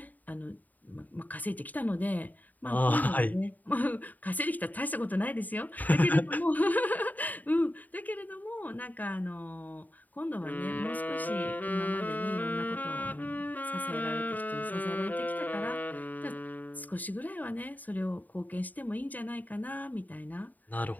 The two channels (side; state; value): right; late; 0.082 ms